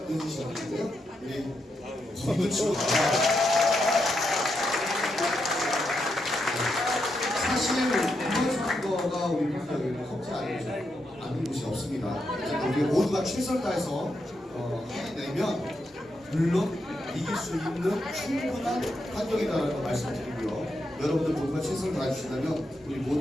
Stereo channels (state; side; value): normal; both; correlation 0.83